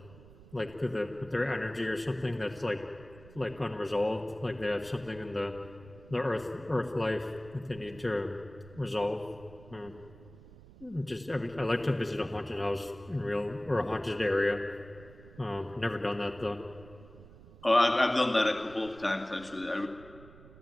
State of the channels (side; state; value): right; noise; rumble, 20 dB below the sound